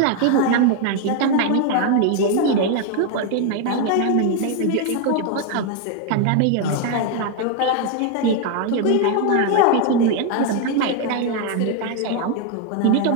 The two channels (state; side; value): different; both; correlation 0.01